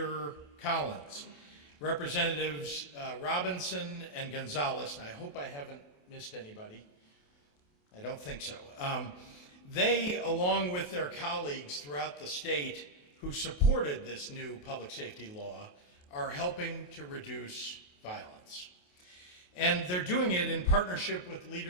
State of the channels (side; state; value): right; late; 28 ms